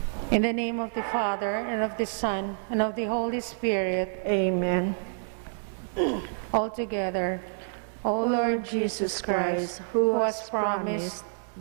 In the name of the Father, and of the Son, and of the Holy Spirit, Amen. all together. O Lord Jesus Christ, who has promised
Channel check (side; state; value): left; silent; digital silence